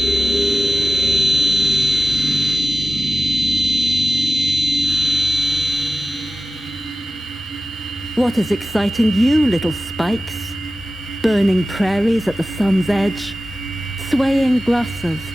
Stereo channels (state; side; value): normal; both; correlation 0.93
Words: What is exciting you, little spikes? Burning prairies at the sun's edge, swaying grasses,